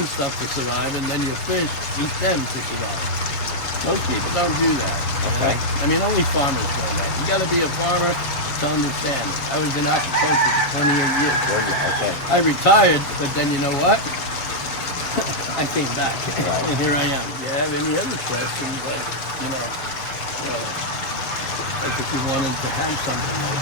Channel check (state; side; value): late; right; 7.3 ms